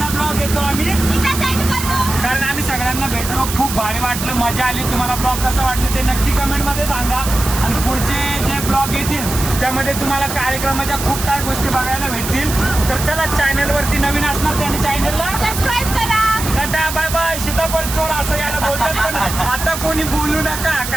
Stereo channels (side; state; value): right; noise; hiss, 6 dB below the sound